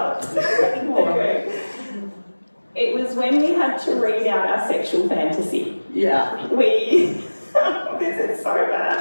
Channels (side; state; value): both; inverted; correlation -1.00